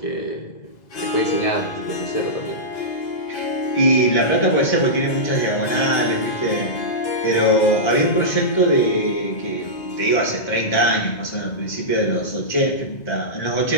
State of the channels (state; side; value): late; right; 2.0 ms